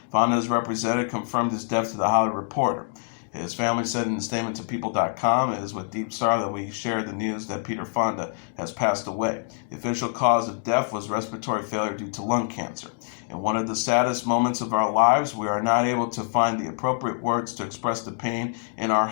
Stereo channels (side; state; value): right; silent; digital silence